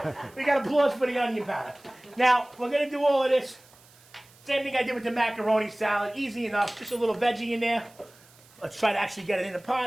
We got applause for the onion powder. Now, we're going to do all of this. Same thing I did with the macaroni salad. Easy enough. Just a little veggie in there. Let's try to actually get it in the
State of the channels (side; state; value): right; noise; hiss, 27 dB below the sound